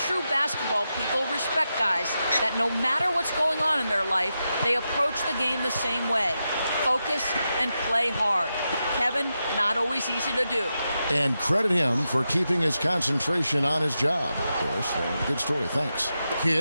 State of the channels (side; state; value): both; inverted; correlation -0.88